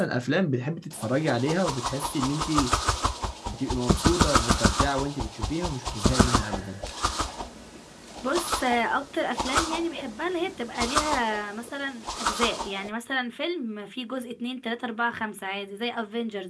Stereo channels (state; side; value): identical; both; correlation 1.00